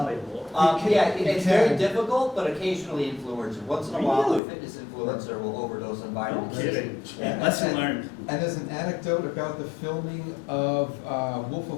It's very difficult, but occasionally influencer. Once in a while, a Really? fitness influencer will overdose on vitamin No C. kidding. Yeah. Lesson learned. And there's an anecdote about the filming of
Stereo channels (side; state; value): right; drops out; at 4.4 s